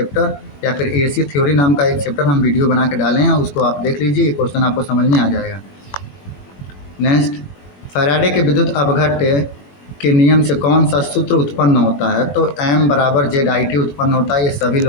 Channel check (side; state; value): right; late; 21 ms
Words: या फिर AC थ्योरी नाम का एक चैप्टर हम वीडियो बना के डाले हैं, उसको आप देख लीजिए, क्वेश्चन आपको समझ में आ जाएगा। नेक्स्ट, फैराडे के विद्युत अपघट्य के नियम से कौन सा सूत्र उत्पन्न होता है? तो m बराबर जेड आई टी उत्पन्न होता है। ये सभी